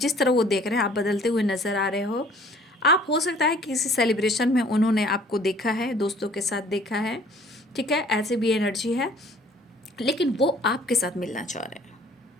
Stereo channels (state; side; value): normal; both; correlation 0.54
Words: तरह वो देख रहे हैं आप बदलते हुए नज़र आ रहे हो। आप हो सकता है किसी सेलिब्रेशन में उन्होंने आपको देखा है, दोस्तों के साथ देखा है, ठीक है, ऐसे भी एनर्जी है, लेकिन वो आपके साथ मिलना चाह रहे हैं।